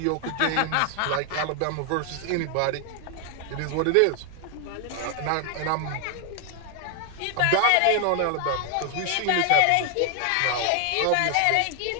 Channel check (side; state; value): both; different; correlation 0.00